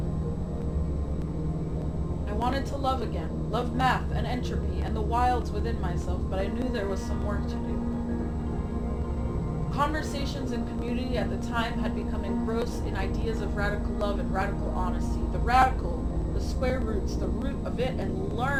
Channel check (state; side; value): identical; both; correlation 1.00